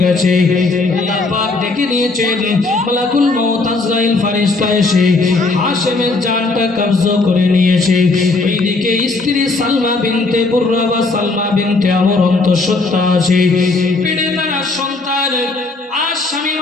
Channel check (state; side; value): quieter; right; 3.5 dB